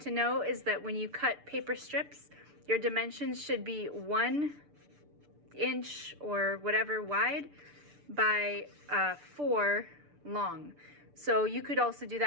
know is that when you cut paper strips, your dimensions should be 1 inch or whatever wide by 4 long. So you could also do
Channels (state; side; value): late; left; 6.8 ms